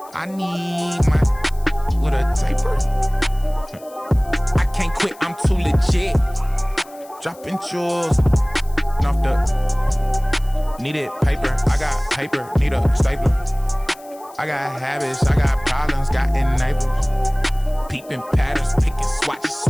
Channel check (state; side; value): noise; left; hiss, 24 dB below the sound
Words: I need my with a taper. I can't quit, I'm too legit. Dropping jewels off the needed paper. I got paper, need a stapler. I got habits, I got problems, got enablers. Peeping patterns, picking, swatch,